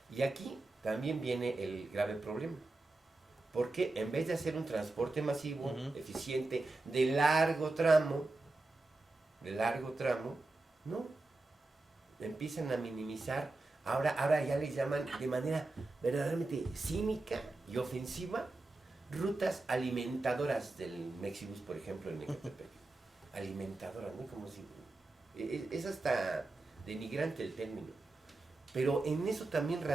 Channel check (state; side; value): quieter; left; 3.1 dB